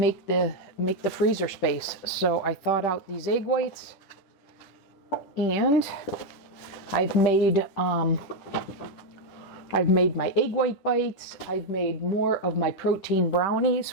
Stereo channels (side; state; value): right; late; 10 ms